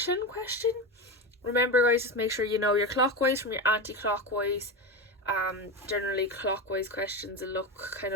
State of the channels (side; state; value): both; normal; correlation 0.19